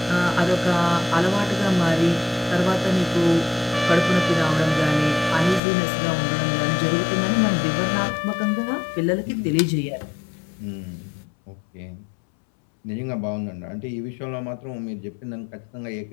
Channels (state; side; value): drops out; right; at 5.6 s